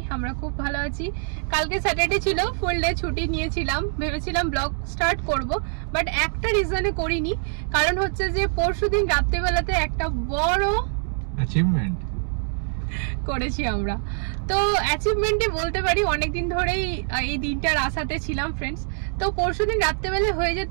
আমরা খুব ভালো আছি। কালকে স্যাটারডে ছিল, ফুল ডে ছুটি নিয়েছিলাম, ভেবেছিলাম ব্লগ স্টার্ট করব, বাট একটা রিজনে করিনি। কারণ হচ্ছে যে পরশুদিন রাত্রেবেলাতে একটা বড় অ্যাচিভমেন্ট করেছি আমরা। তো অ্যাচিভমেন্টই বলতে পারি, অনেকদিন ধরেই এই দিনটার আশাতে ছিলাম ফ্রেন্ডস। তো পরশুদিন রাত্রেবেলা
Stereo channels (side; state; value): left; silent; 58 dB below the other